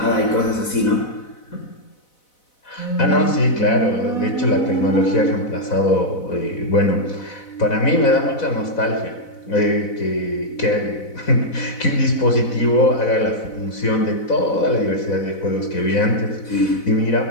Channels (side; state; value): right; late; 4.0 ms